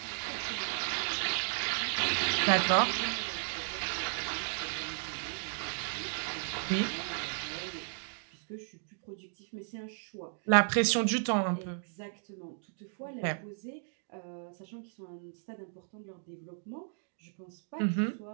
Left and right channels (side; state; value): left; silent; digital silence